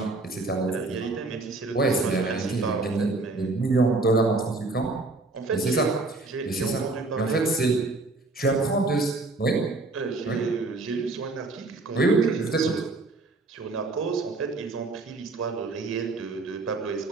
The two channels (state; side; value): quieter; left; 3.3 dB